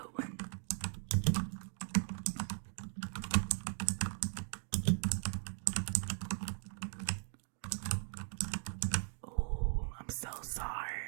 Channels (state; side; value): silent; left; 52 dB below the other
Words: one. Oh, I'm so